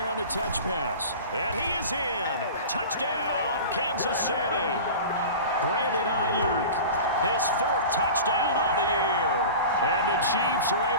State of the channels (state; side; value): inverted; both; correlation -0.35